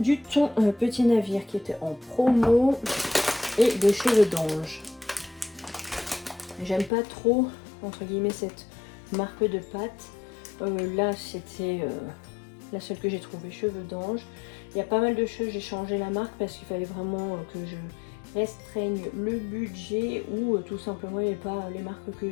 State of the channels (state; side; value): drops out; right; at 6.9 s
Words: thon petit navire qui était en promo et des cheveux d'ange. J'aime pas trop, entre guillemets, cette marque de pâte. Là, c'était la seule que j'ai trouvée, cheveux d'ange. Il y a pas mal de choses, j'ai changé la marque parce qu'il fallait vraiment que je restreigne le budget ou tout simplement il n'y avait pas les marques que